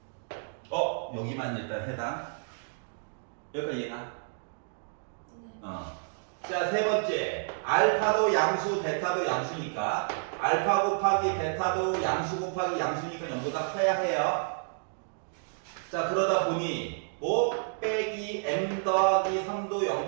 여기만 일단 해당. 여기까지 이해가? 네. 자, 세 번째. 알파도 양수, 베타도 양수니까 알파 곱하기 베타도 양수 곱하기 양수니까 0보다 커야 해요. 자, 그러다 보니 뭐 빼기 m 더하기 3도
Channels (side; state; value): left; silent; digital silence